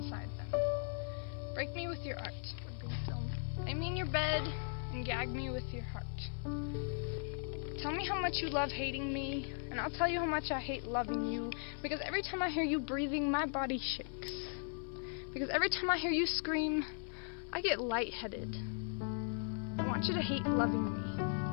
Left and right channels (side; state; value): right; silent; 52 dB below the other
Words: them. Break me with your art. Lay me in your bed and gag me with your heart. Tell me how much you love hating me, and I'll tell you how much I hate loving you, because every time I hear you breathing, my body shakes. Because every time I hear you scream, I get lightheaded. I want you to hate loving